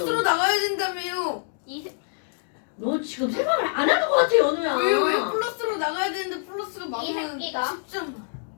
나가야 된다며요. 너 지금 생각을 안 하는 것 같아 연우야. 왜 플러스로 나가야 되는데 플러스가 이 많으면 새끼가 10점.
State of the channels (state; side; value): silent; right; digital silence